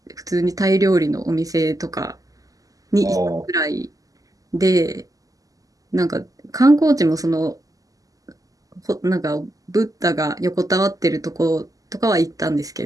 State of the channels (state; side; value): late; left; 0.17 ms